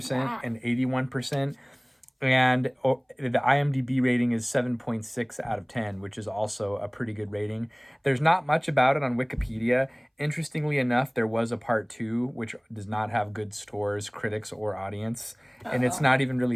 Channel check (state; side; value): identical; both; correlation 1.00